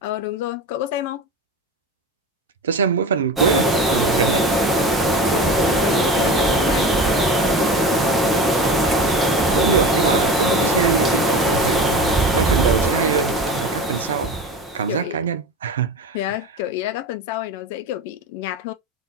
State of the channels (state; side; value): normal; both; correlation 0.30